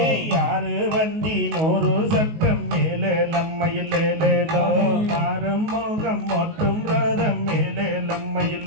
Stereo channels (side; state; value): left; late; 19 ms